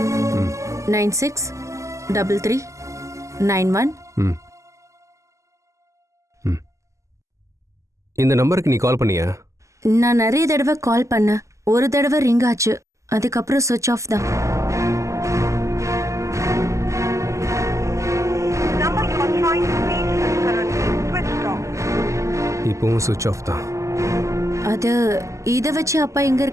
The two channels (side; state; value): left; late; 0.15 ms